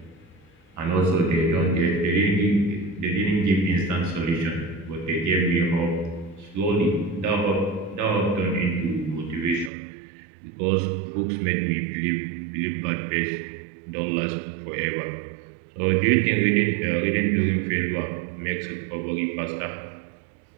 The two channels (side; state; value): left; drops out; at 9.7 s